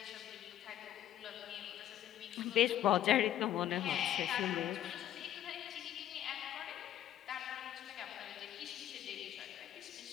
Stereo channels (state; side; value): quieter; right; 11.8 dB